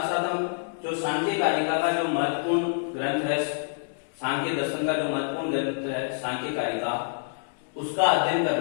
साथ हम जो सांख्य कारिका का जो महत्वपूर्ण ग्रंथ है, सांख्य दर्शन का जो महत्वपूर्ण ग्रंथ है सांख्य कारिका, उसका अध्ययन कर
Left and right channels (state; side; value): silent; right; digital silence